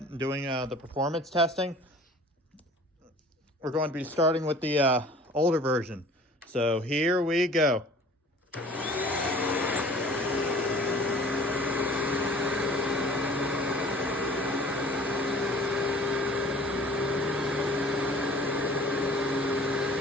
and doing the performance testing. We're going to be starting with the older version. So here we go.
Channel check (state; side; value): normal; both; correlation 0.48